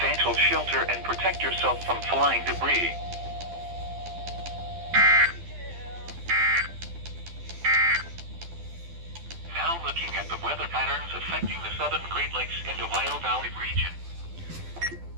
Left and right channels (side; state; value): left; late; 12 ms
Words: shelter and protect yourself from flying debris. Now looking at the weather patterns affecting the southern Great Lakes and Ohio Valley region.